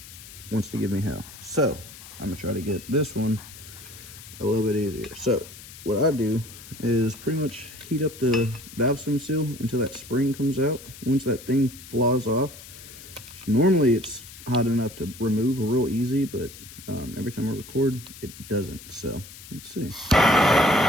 wants to give me hell. So I'm gonna try to get this one a little bit easier. So what I do is pretty much heat up the valve stem seal until that spring comes out. Once that thing flaws off, normally it's hot enough to remove real easy, but every time I record, it doesn't. So let's see.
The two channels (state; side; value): noise; left; hiss, 16 dB below the sound